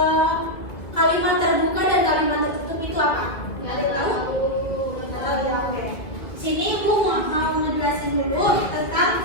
kalimat terbuka dan kalimat tertutup itu apa? Nggak ada yang tahu? Tahu ya, oke. Sini Ibu mau ngejelasin dulu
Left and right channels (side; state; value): right; late; 2.0 ms